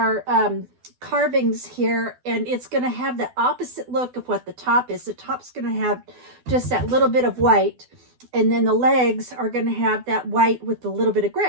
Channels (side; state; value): left; late; 12 ms